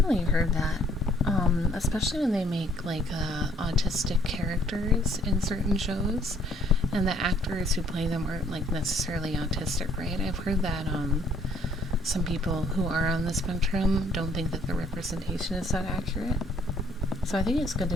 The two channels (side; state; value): both; normal; correlation 0.61